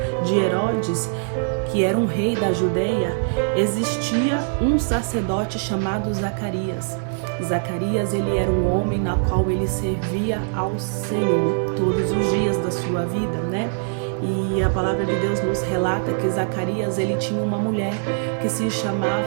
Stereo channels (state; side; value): silent; left; 62 dB below the other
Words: de Herodes, que era um rei da Judeia, existia um sacerdote chamado Zacarias. Zacarias, ele era um homem na qual ele servia ao Senhor todos os dias da sua vida, né? E a palavra de Deus nos relata que Zacarias, ele tinha uma mulher que se